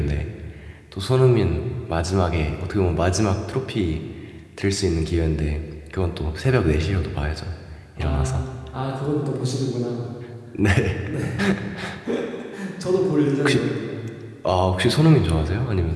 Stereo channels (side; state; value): both; identical; correlation 1.00